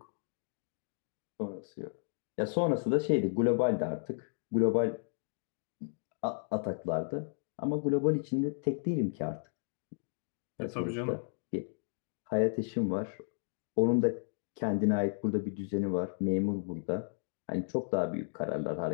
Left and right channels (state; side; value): silent; right; digital silence